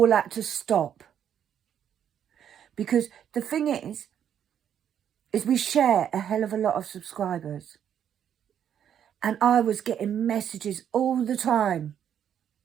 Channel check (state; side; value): quieter; left; 9.2 dB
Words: had to stop. Because the thing is we share a hell of a lot of subscribers. And I was getting messages all the time